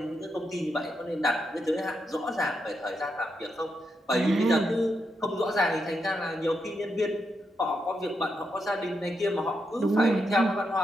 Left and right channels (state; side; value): normal; both; correlation 0.83